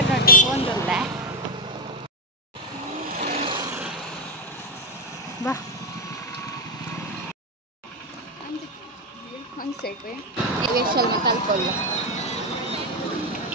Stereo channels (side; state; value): both; normal; correlation 0.08